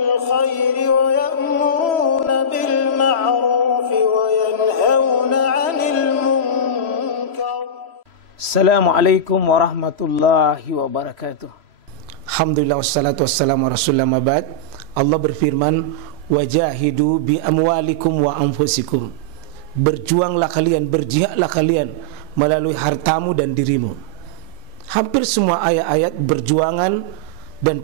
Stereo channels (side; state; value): left; late; 3.0 ms